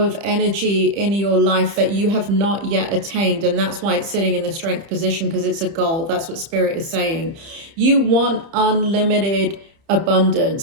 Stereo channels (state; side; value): late; left; 30 ms